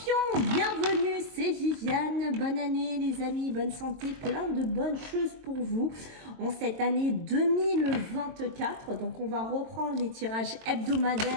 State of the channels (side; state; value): left; late; 22 ms